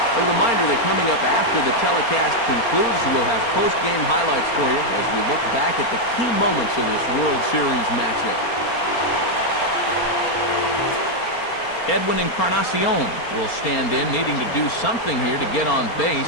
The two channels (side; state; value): right; late; 4.3 ms